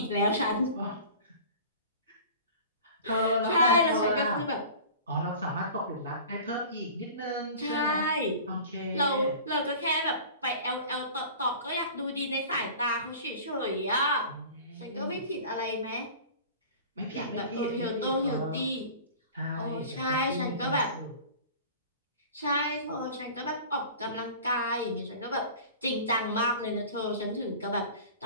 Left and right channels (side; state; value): both; inverted; correlation -0.40